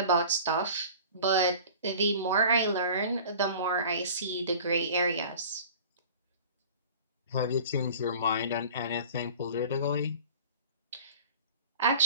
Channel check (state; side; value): inverted; both; correlation -0.42